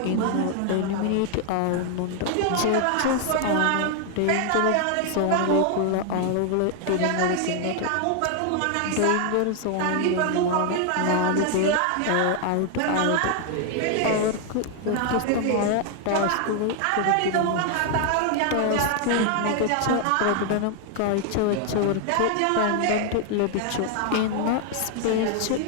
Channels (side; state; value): both; different; correlation 0.00